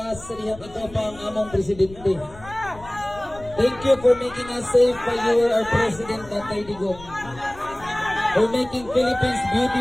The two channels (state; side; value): noise; left; rumble, 18 dB below the sound